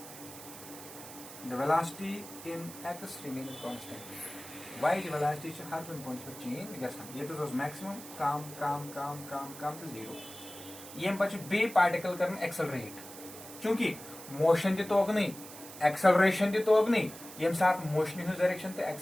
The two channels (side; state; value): right; noise; hiss, 14 dB below the sound